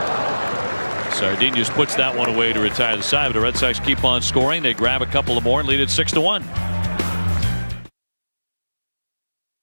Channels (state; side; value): inverted; both; correlation -1.00